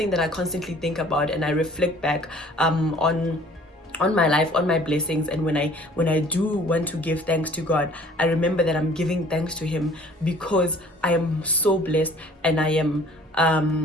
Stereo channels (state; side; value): normal; both; correlation 0.52